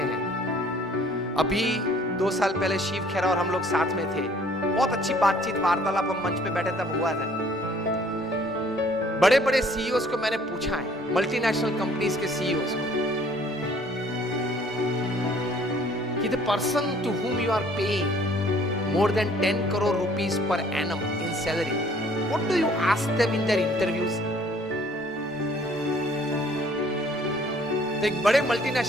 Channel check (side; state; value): both; normal; correlation 0.58